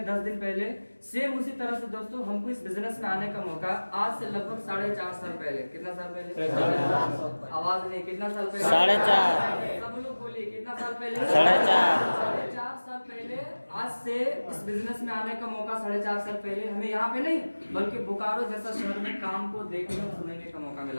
10 दिन पहले, सेम उसी तरह से दोस्तों हमको इस बिजनेस में आने का मौका आज से लगभग 4.5 साल पहले। कितना साल पहले? आवाज नहीं, कितना साल पहले? 4.5। सब लोग बोलिए, कितना साल पहले? 4.5। 4.5 साल पहले आज से इस बिजनेस में आने का मौका 4.5 साल पहले हमें यहाँ पे नहीं बल्कि बोकारो जैसा शहर में काम को देखने और सुनने का मौका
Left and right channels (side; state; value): both; inverted; correlation -1.00